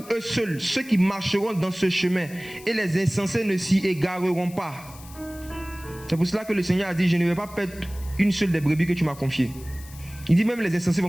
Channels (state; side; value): noise; left; hiss, 19 dB below the sound